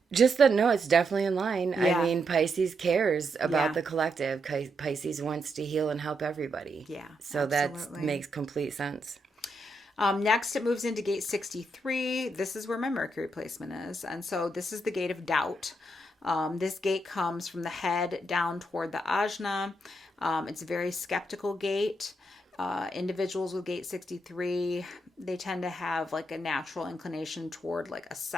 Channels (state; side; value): normal; both; correlation 0.81